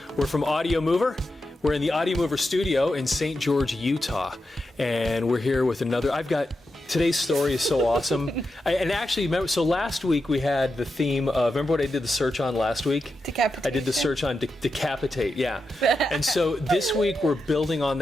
We're from Audio Mover. We're in the Audio Mover studio in St. George, Utah, and we're here with another. Today's story is so awesome. And actually, remember, so last week we had the theme of, remember what I did the search on last week? Decapitation. I did the search on decapitate, yeah. And so this week we're building on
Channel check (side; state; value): both; normal; correlation 0.88